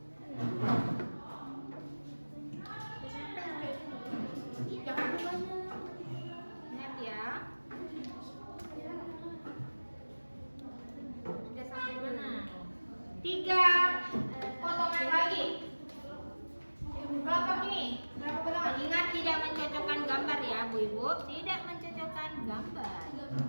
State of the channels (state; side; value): inverted; both; correlation -1.00